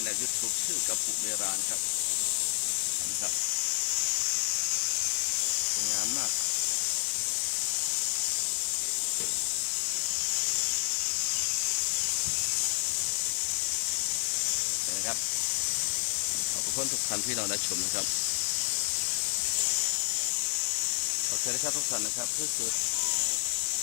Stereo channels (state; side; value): silent; right; 58 dB below the other